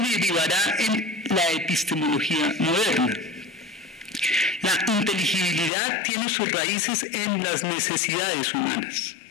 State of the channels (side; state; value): right; drops out; at 5.7 s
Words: derivará en la epistemología moderna. La inteligibilidad tiene sus raíces en las necesidades humanas.